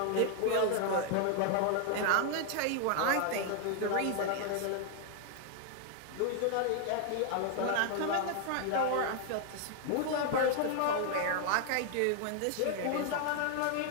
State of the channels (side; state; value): both; different; correlation 0.00